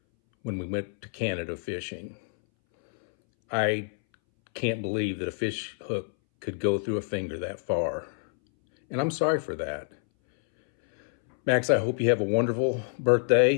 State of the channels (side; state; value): right; silent; 60 dB below the other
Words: when we went to Canada fishing. I can't believe that a fish hook could go through a finger that far. And I'm sorry for that. Max, I hope you have a wonderful